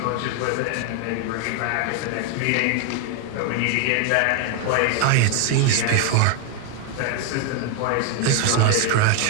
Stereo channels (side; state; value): both; different; correlation 0.01